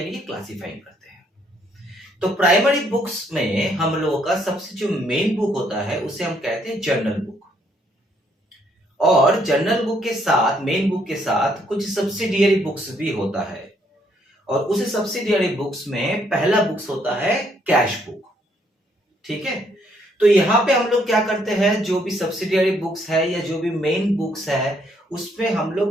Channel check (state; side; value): normal; both; correlation 0.69